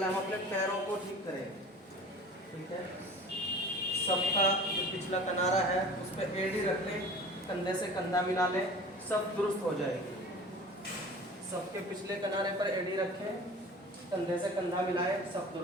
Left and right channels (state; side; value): normal; both; correlation 0.41